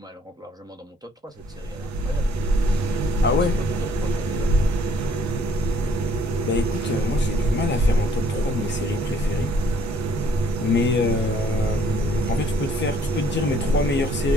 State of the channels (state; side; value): normal; both; correlation 0.62